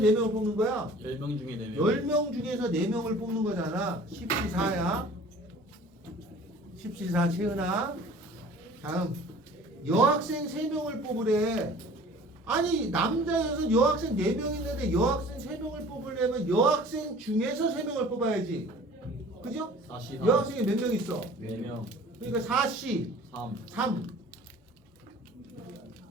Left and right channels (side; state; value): both; normal; correlation 0.47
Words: 뽑는 거야? 10명 중에 4명. 10명 중에서 4명을 뽑는 거잖아. 14야. 14 채은아. 다음 여학생 3명을 뽑으래. 아니 남자여서 여학생 4명 있는데 여학생 3명을 뽑으려면 여학생 중에서 3명을 뽑아야지. 그죠? 44. 여학생이 몇 명 있어? 4명. 그러니까 4C 3. 3.